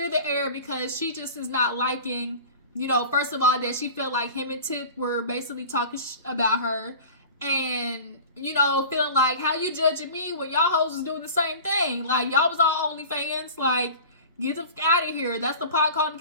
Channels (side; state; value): both; inverted; correlation -0.39